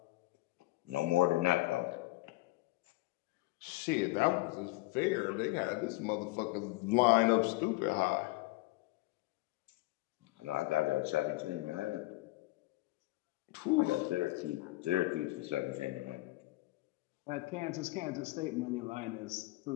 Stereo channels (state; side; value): quieter; right; 20.2 dB